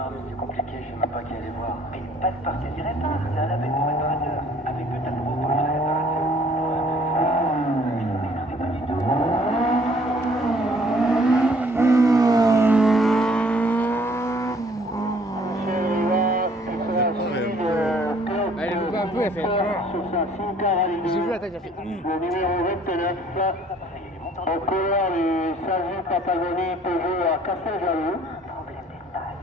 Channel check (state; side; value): normal; both; correlation 0.58